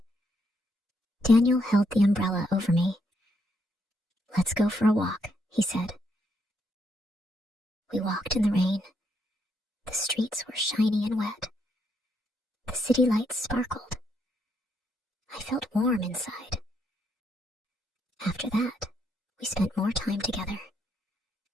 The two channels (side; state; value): both; normal; correlation 0.76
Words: Daniel held the umbrella over me. "Let's go for a walk," he said. We walked in the rain. The streets were shiny and wet. The city lights sparkled. I felt warm inside. After that, we spent more time together.